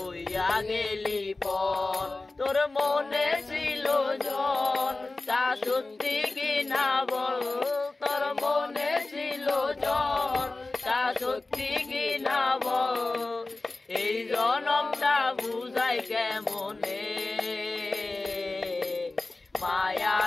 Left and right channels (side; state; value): right; quieter; 3.2 dB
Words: গেলি পর তোর মনে ছিল জন তা সত্যি কি না বল তোর মনে ছিল জন তা সত্যি কি না বল এই জনমটা বুঝাই কেমনে মায়া